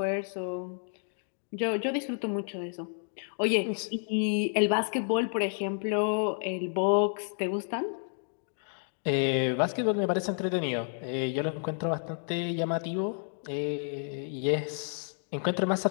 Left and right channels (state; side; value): silent; right; 57 dB below the other